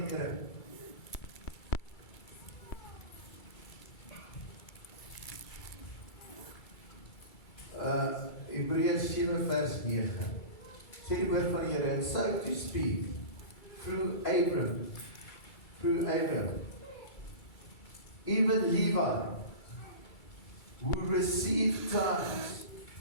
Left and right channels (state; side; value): late; right; 2.3 ms